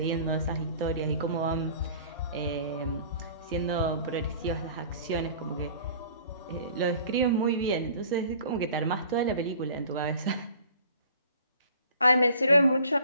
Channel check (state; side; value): inverted; both; correlation -0.49